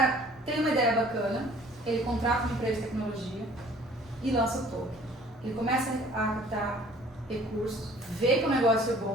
tem uma ideia bacana, ele contrata uma empresa de tecnologia e lança o token. Ele começa a captar recursos, vê que o negócio é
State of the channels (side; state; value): both; normal; correlation 0.52